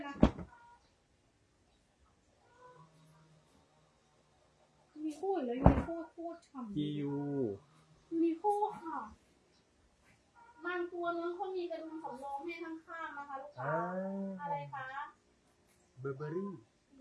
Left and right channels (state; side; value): identical; both; correlation 1.00